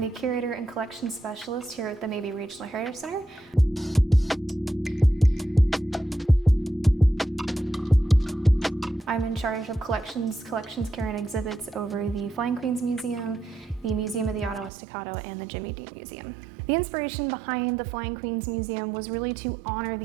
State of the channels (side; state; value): left; drops out; at 14.7 s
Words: Curator and Collections Specialist here at the Mabee Regional Center. I'm in charge of collections care and exhibits over the Flying Queens Museum, the Museum of the Ottawa Staccato, and the Jimmy Dean Museum. The inspiration behind the Flying Queens Museum was really to honor